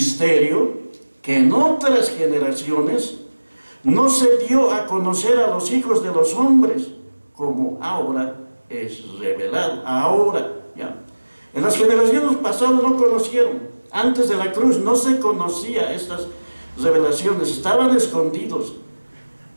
que en otras generaciones no se dio a conocer a los hijos de los hombres, como ahora es revelado. Ahora, ya. En las generaciones pasadas no conocieron. Antes de la cruz no se conocía estas revelaciones, estaban escondidos.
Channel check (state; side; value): inverted; both; correlation -1.00